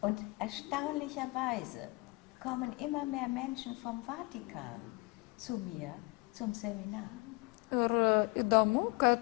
Und erstaunlicherweise kommen immer mehr Menschen vom Vatikan zu mir zum Seminar. Ir įdomu,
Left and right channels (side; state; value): right; quieter; 26.5 dB